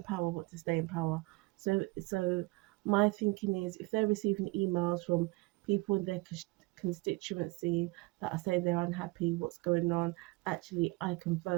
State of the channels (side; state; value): left; quieter; 23.7 dB